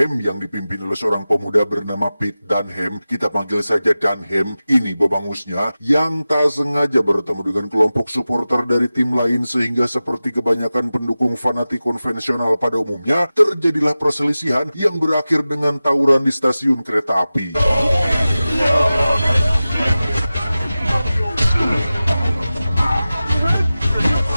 yang dipimpin oleh seorang pemuda bernama Pete Dunham. Kita panggil saja Dunham. Ini bebangusnya yang tak sengaja bertemu dengan kelompok supporter dari tim lain, sehingga seperti kebanyakan pendukung fanatik konvensional pada umumnya, terjadilah perselisihan yang berakhir dengan tawuran di stasiun kereta api.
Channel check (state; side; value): inverted; both; correlation -0.95